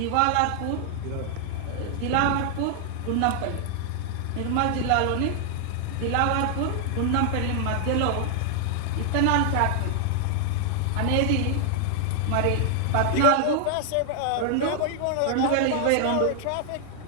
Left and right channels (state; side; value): different; both; correlation 0.00